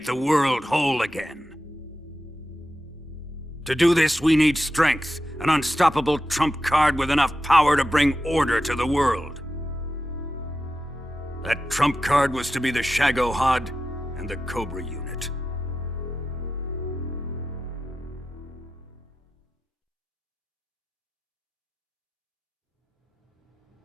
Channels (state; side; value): normal; both; correlation 0.91